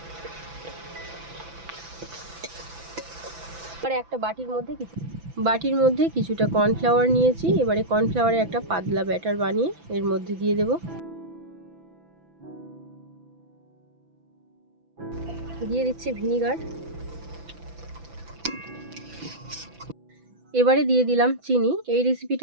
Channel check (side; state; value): left; late; 6.0 ms